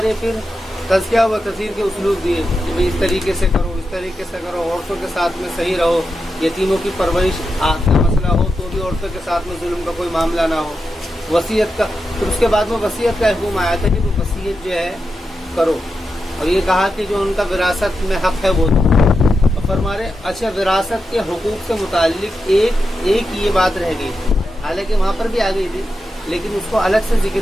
پھر تذکیہ و تذکیر کے اسلوب دیے کہ بھئی اس طریقے سے کرو، اس طریقے سے کرو، عورتوں کے ساتھ میں صحیح رہو، یتیموں کی پرورش کا مسئلہ ہو تو بھی عورتوں کے ساتھ میں ظلم کا کوئی معاملہ نہ ہو. وصیت کا، پھر اس کے بعد میں وصیت کا حکم آیا تھا کہ وہ وصیت جو ہے کرو، اور یہ کہا کہ جو ان کا وراثت میں حق ہے وہ دو. اور فرما رہے اچھا وراثت کے حقوق سے متعلق ایک یہ بات رہ گئی تھی، حالانکہ وہاں پر بھی آ گئی تھی لیکن اس کو الگ سے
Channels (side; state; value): both; normal; correlation 0.88